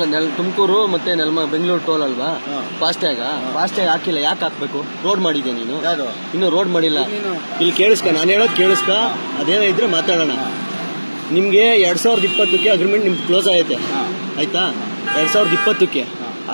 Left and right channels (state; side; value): inverted; both; correlation -1.00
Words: ತುಮಕೂರು ಮತ್ತೆ ಬೆಂಗಳೂರು ಟೋಲ್ ಅಲ್ವಾ? ಫಾಸ್ಟ್ಯಾಗ್ ಹಾಕಿಲ್ಲ. ಯಾಕೆ ಹಾಕ್ಬೇಕು? ರೋಡ್ ಮಾಡಿದ್ಯಾ ನೀನು? ಇನ್ನು ರೋಡ್ ಮಾಡಿಲ್ಲ. ಇಲ್ಲಿ ಕೇಳಿಸ್ಕ, ನಾನು ಹೇಳೋದು ಕೇಳಿಸ್ಕ. ಅದೇನೋ ಇದ್ರೆ ಮಾತಾಡೋಣ. ನಿಮ್ಗೆ 2020ಕ್ಕೆ ಅಗ್ರಿಮೆಂಟ್ ನಿಮ್ಗೆ ಕ್ಲೋಸ್ ಆಗೈತೆ, ಆಯ್ತಾ? 2020ಕ್ಕೆ.